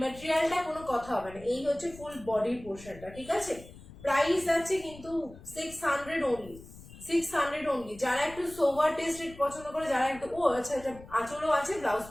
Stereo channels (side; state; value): left; noise; rumble, 18 dB below the sound